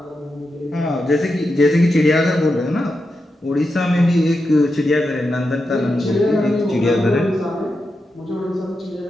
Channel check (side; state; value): both; normal; correlation 0.88